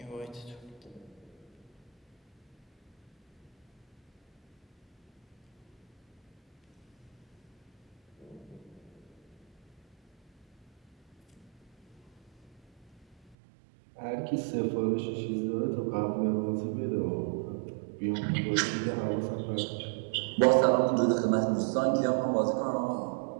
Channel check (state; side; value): drops out; left; at 13.4 s